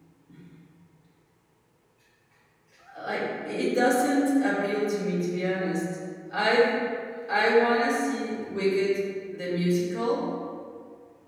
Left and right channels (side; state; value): both; identical; correlation 1.00